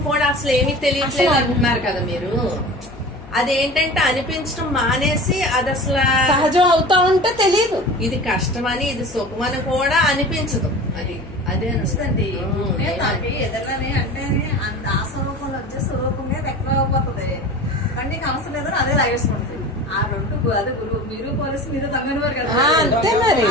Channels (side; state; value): left; noise; hum, 18 dB below the sound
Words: కూడా అసలు ఏమీ తెలియట్లేదు అంటున్నారు కదా మీరు. అదేంటంటే అనిపించడం మానేసి అది అసలు సహజం అవుతా ఉంటే తెలియదు. ఇది కష్టమని ఇది సుఖమని కూడా అనిపించదు. అది అదే అనిపిస్తుంది. ఎదురని అంటే ఆ స్వరూపంలో వచ్చే స్వరూపంగా వ్యక్తం అయిపోతుంది. కానీ నీకు అవసరం లేదని అదే లాగేసుకుంటుంది. ఆ రెండు అదే గురువు మీరు పోలీసు మీరు దొంగనివారు కదా. అంతే మరి,